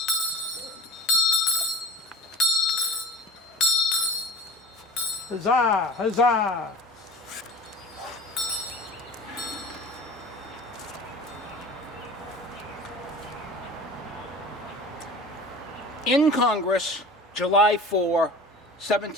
Huzzah! Huzzah! In Congress, July 4,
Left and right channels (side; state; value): both; normal; correlation 0.37